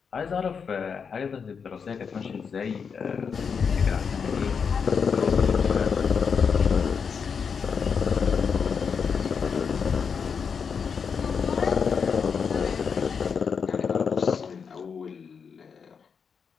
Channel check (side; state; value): right; quieter; 6.2 dB